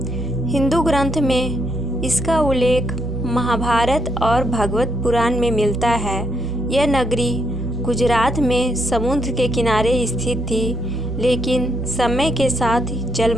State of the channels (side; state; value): both; normal; correlation 0.76